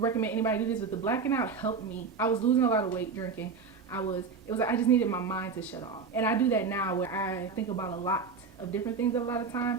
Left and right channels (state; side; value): quieter; left; 5.1 dB